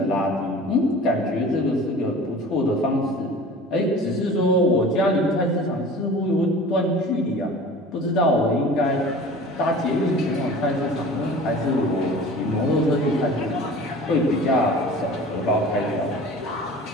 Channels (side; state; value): both; normal; correlation 0.41